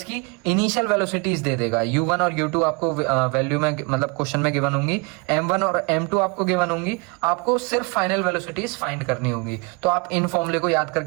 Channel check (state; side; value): quieter; left; 30.6 dB